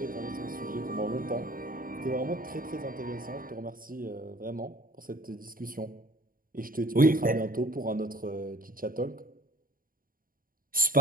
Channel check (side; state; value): left; late; 0.41 ms